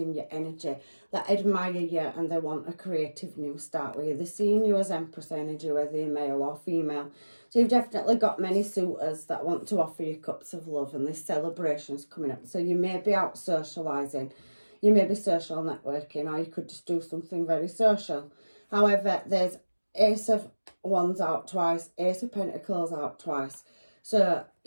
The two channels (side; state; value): both; inverted; correlation -1.00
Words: your energy that admire you, and they want a creative new start with you. They're seeing you as Empress energy, whether you're male or female. So you've definitely got many suitors that want to offer you cups of love, and there's celebrations coming up. So you may be out socialising, you may be social networking, or you could just do something very social. However, there's Ace of Wands out twice, Ace of Pentacles out twice. So